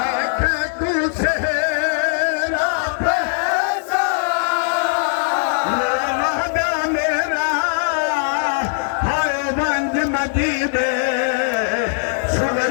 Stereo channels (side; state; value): right; silent; digital silence